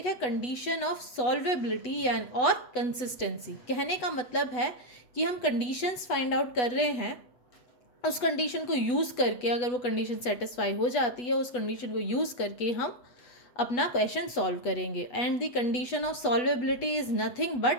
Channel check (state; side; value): late; right; 8.1 ms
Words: है कंडीशन ऑफ सॉल्वेबिलिटी यानी और कंसिस्टेंसी। कहने का मतलब है कि हम कंडीशंस फाइंड आउट कर रहे हैं, उस कंडीशन को यूज़ करके अगर वो कंडीशन सेटिस्फाई हो जाती है, उस कंडीशन को यूज़ करके हम अपना क्वेश्चन सॉल्व करेंगे। And the condition of solvability is nothing